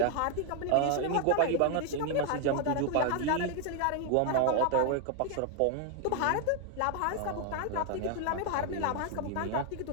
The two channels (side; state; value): both; different; correlation 0.00